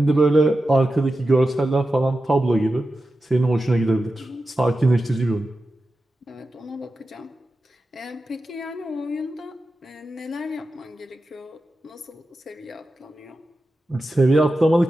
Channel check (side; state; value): both; normal; correlation 0.92